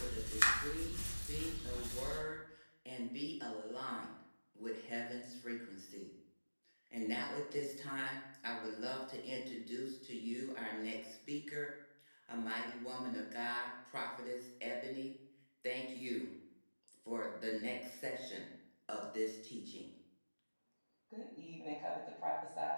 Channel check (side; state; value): both; inverted; correlation -1.00